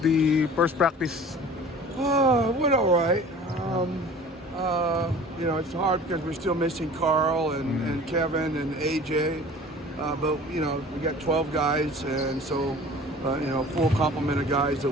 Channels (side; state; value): both; normal; correlation 0.44